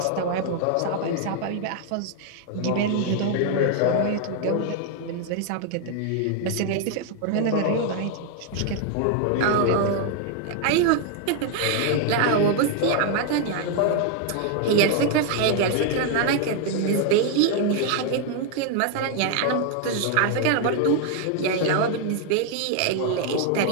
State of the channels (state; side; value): different; both; correlation 0.00